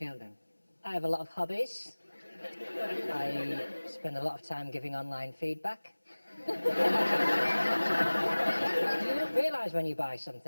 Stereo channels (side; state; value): both; inverted; correlation -1.00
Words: I have a lot of hobbies. I spend a lot of time giving online feedback. Do you not realise when you buy